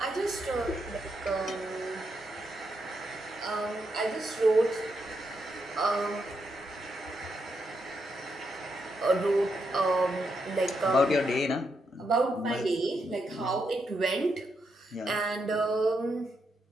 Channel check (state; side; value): normal; both; correlation 0.82